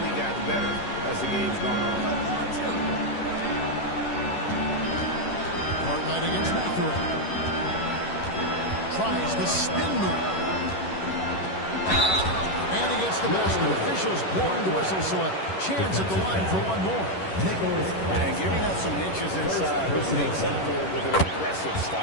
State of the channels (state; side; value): late; right; 11 ms